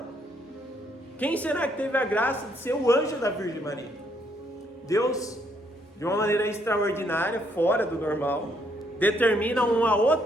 Quem será que teve a graça de ser o anjo da Virgem Maria? Deus, de uma maneira extraordinária, fora do normal, determina uma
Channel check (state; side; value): normal; both; correlation 0.71